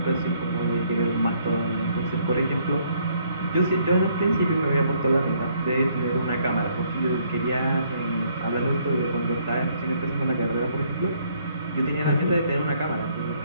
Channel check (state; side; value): inverted; both; correlation -0.67